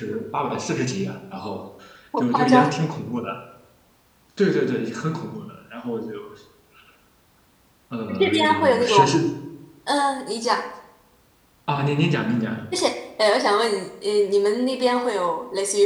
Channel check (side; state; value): both; identical; correlation 1.00